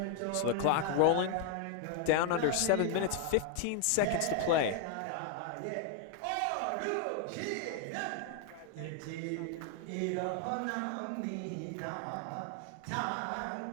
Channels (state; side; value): different; both; correlation 0.00